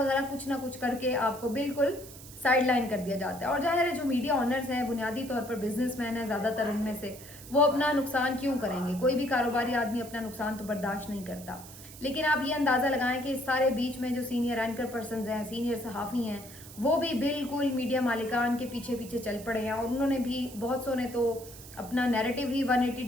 वगैरह, कुछ ना कुछ करके आपको बिल्कुल साइड लाइन कर दिया जाता है। और जाहिर है जो मीडिया ऑनर्स हैं बुनियादी तौर पर बिजनेसमैन हैं ज़्यादातर इनमें से, वो अपना नुकसान क्यों करेंगे? कोई भी कारोबारी आदमी अपना नुकसान तो बर्दाश्त नहीं करता। लेकिन आप ये अंदाज़ा लगाएं कि इस सारे बीच में जो सीनियर एंकर पर्सनस हैं, सीनियर सहाफ़ी हैं, वो भी बिल्कुल मीडिया मालिकान के पीछे पीछे चल पड़े हैं, और उन्होंने भी बहुत सौ ने तो अपना नैरेटिव ही 180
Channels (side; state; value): right; noise; hiss, 17 dB below the sound